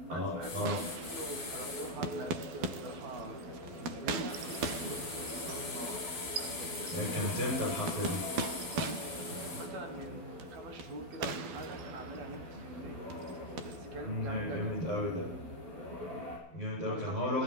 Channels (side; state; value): left; late; 12 ms